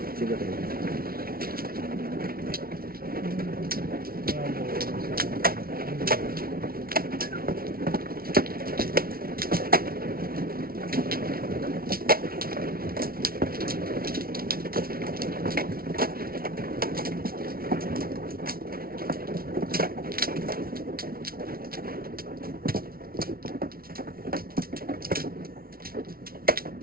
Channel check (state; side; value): late; left; 0.43 ms